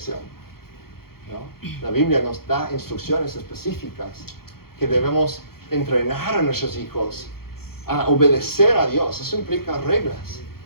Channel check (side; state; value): right; late; 0.94 ms